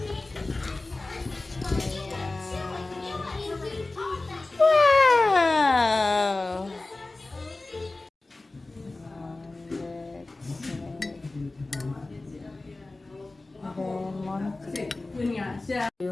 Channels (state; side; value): quieter; right; 3.1 dB